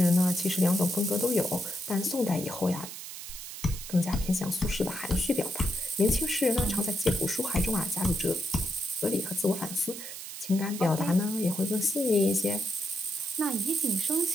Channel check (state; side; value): noise; right; hiss, 10 dB below the sound